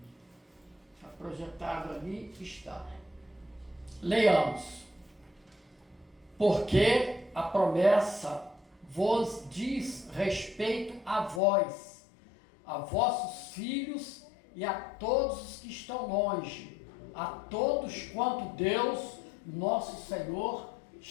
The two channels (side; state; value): right; drops out; at 11.4 s